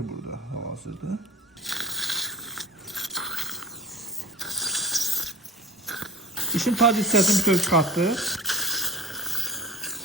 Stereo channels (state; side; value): normal; both; correlation 0.38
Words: burada hal-hazırda. Dişin tac hissəsini bütöv çıxartdıq.